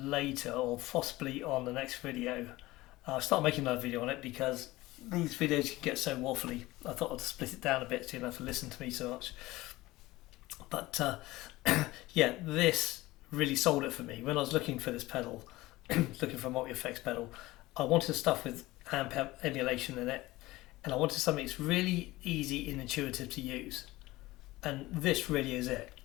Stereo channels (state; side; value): quieter; right; 18.9 dB